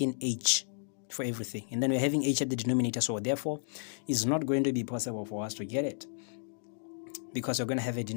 h for everything, and then we're having h at the denominator, so therefore it's not going to be possible for us to get it, because we're going to have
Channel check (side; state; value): right; silent; digital silence